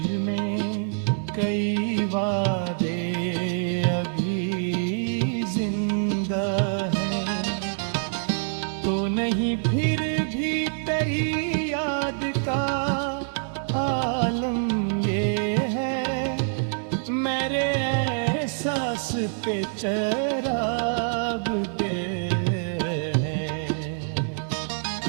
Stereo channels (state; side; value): silent; left; digital silence